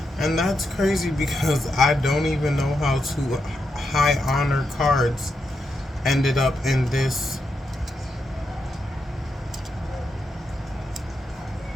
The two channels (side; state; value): both; normal; correlation 0.84